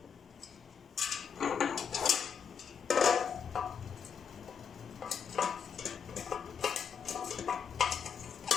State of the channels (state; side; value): quieter; right; 6.8 dB